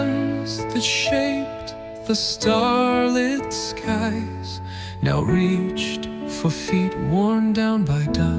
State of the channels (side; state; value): both; identical; correlation 1.00